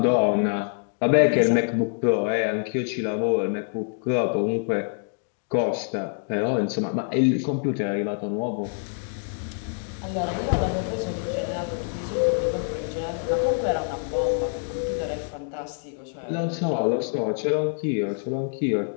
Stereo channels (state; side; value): silent; right; 61 dB below the other